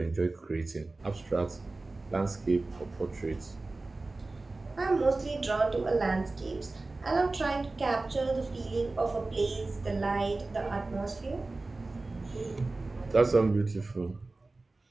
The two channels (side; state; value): left; quieter; 3.3 dB